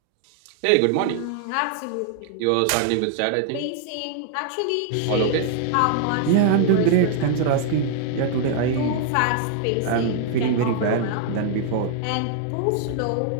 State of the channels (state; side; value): different; both; correlation 0.00